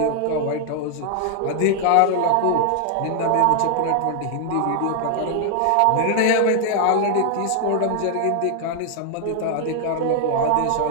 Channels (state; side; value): different; both; correlation 0.00